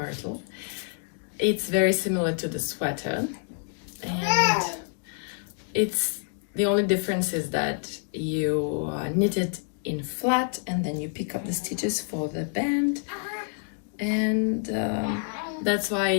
It's very similar to the sweater, and it's the only difference is that you knit it in flat and then you pick up the stitches for the band, and that's why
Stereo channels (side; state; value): right; silent; 60 dB below the other